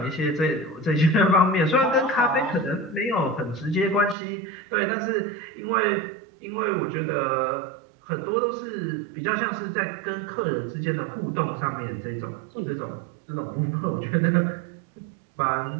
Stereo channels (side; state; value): left; drops out; at 4.2 s